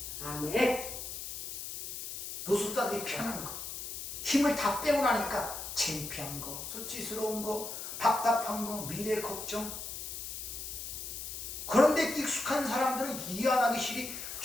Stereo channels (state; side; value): noise; left; hiss, 7 dB below the sound